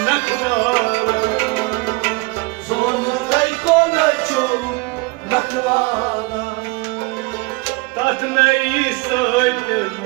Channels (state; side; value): quieter; left; 25.7 dB